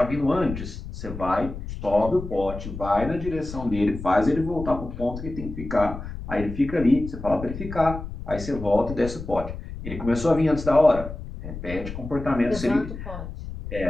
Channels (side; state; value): left; noise; rumble, 9 dB below the sound